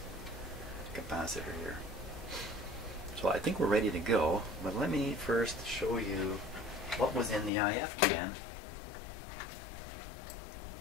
capacitor here. So I think we're ready to go, but let me first show you what was in the IF can.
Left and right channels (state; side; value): drops out; right; at 7.5 s